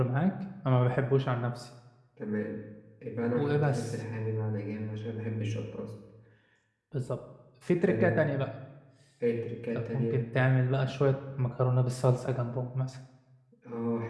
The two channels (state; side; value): identical; both; correlation 1.00